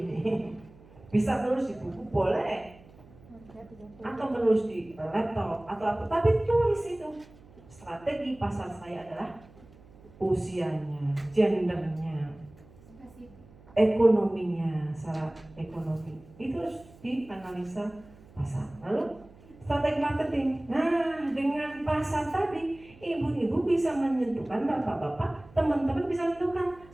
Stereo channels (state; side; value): noise; right; hum, 23 dB below the sound